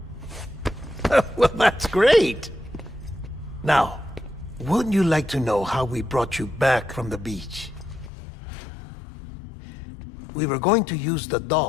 Well, that's great. Now, wouldn't you like to know how we brought you back from the beach? We were going to use the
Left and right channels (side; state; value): right; drops out; at 8.1 s